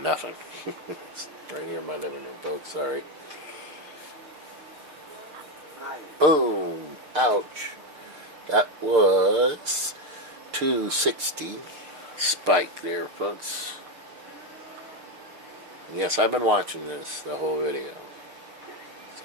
nothing. It's right here in my living room, folks. Sorry. Boom! Ouch! That was 260 spike there, folks. Yes, I've been watching the whole video.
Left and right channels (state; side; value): late; left; 6.7 ms